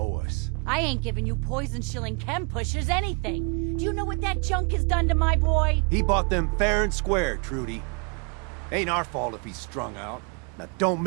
us. I ain't giving you poison-shilling chem pushers anything. Do you know what that junk has done to my boy? He bought them fair and square, Trudy. Ain't our fault if he's strung out. Now don't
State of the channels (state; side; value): quieter; left; 33.7 dB